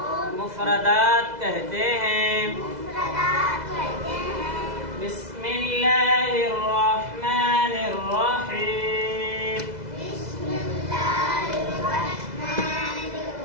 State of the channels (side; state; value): left; late; 2.0 ms